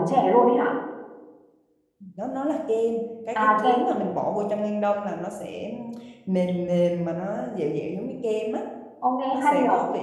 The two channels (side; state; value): both; identical; correlation 1.00